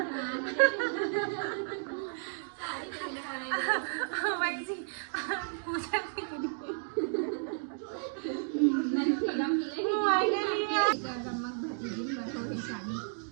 साड़ी पहनने वाले वही जी पूछा मन फ्रीडम मिले गमक भजी दिन बटोरे साड़ी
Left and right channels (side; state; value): left; silent; digital silence